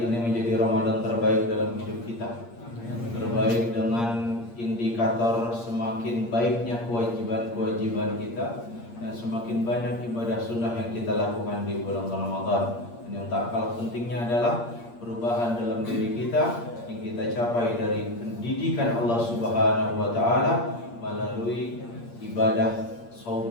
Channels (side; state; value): right; late; 8.6 ms